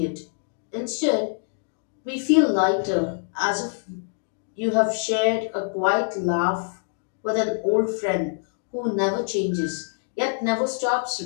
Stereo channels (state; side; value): silent; right; digital silence